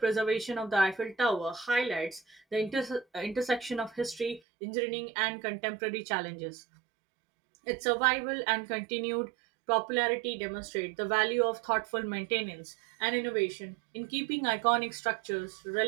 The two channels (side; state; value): left; drops out; at 4.4 s